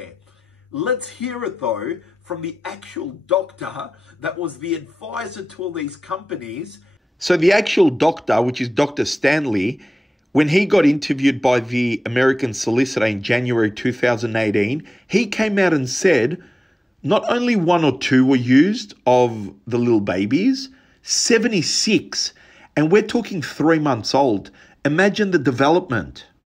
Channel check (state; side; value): normal; both; correlation 0.96